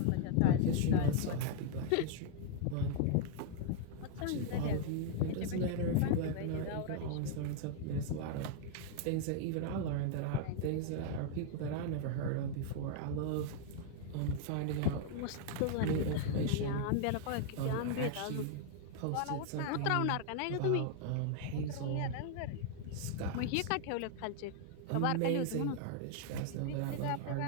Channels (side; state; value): both; different; correlation 0.00